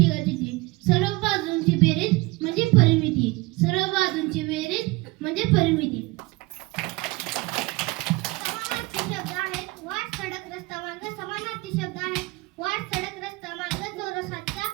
सर्व बाजूंची बेरीज म्हणजे परिमिती, सर्व बाजूंची बेरीज म्हणजे परिमिती. समानार्थी शब्द आहेत वाट सडक रस्ता मार्ग, समानार्थी शब्द आहेत वाट सडक रस्ता मार्ग. चौरसाचा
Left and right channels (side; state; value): left; quieter; 23.2 dB